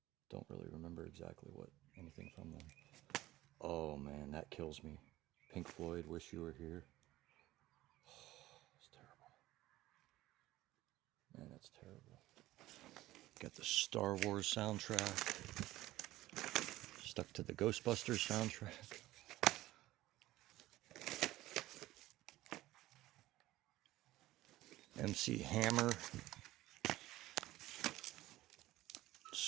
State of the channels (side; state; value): left; quieter; 16.6 dB